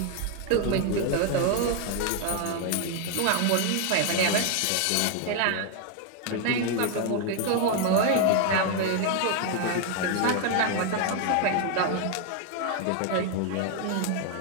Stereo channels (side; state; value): both; different; correlation 0.01